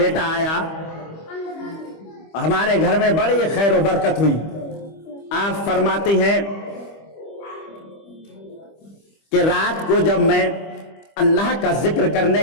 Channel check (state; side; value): late; right; 25 ms